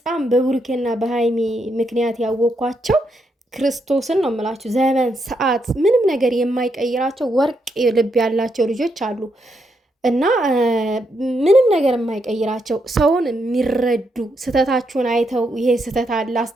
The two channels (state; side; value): normal; both; correlation 0.80